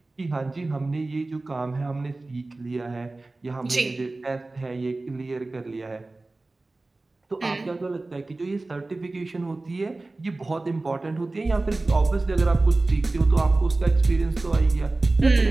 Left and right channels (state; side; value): quieter; left; 3.1 dB